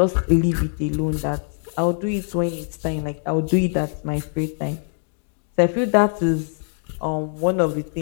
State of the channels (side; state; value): right; silent; 64 dB below the other